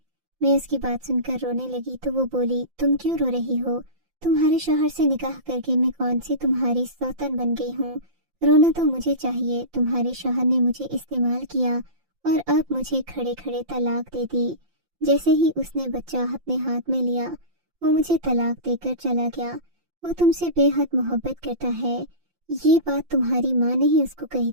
میں اس کی بات سن کر رونے لگی تو وہ بولی تم کیوں رو رہی ہو؟ تمہارے شوہر سے نکاح کر کے میں کون سی تمہاری سوتن بن گئی ہوں؟ رونا تو مجھے چاہیے، تمہارے شوہر نے مجھے استعمال کیا اور اب مجھے کھڑے کھڑے طلاق دے دی۔ جیسے ہی اس نے بچہ اپنے ہاتھ میں لیا وہ مجھے طلاق دے کر چلا گیا۔ وہ تم سے بے حد محبت کرتا ہے۔ یہ بات تمہاری ماں نے ہی اس کو کہی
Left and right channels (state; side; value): late; left; 5.8 ms